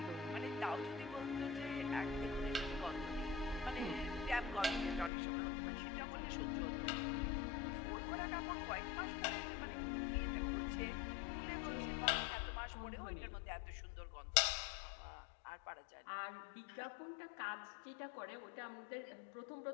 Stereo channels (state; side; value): drops out; right; at 5.1 s